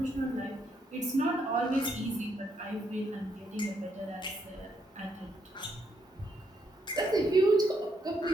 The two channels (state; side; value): normal; both; correlation 0.75